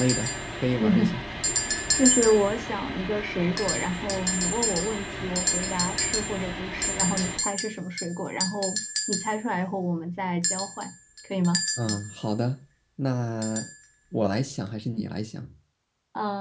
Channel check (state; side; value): identical; both; correlation 1.00